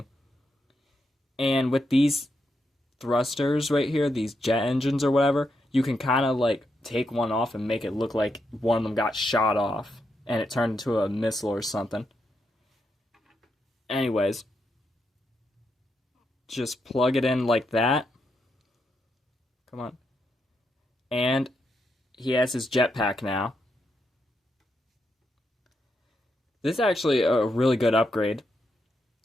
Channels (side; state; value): both; normal; correlation 0.82